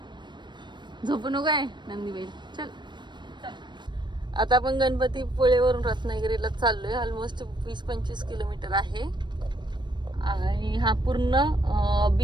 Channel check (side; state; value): left; late; 0.22 ms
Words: झोपू नको आहे नंदीबाई. चल आता आपण गणपतीपुळेवरून रत्नागिरीला चाललोय. ऑलमोस्ट 20-25 किलोमीटर आहे आणि हा पूर्ण